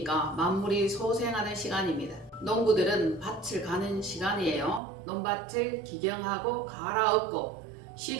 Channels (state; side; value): drops out; left; at 4.8 s